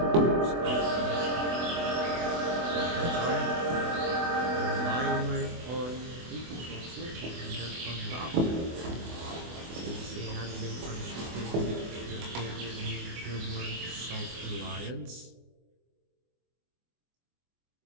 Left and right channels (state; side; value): late; left; 24 ms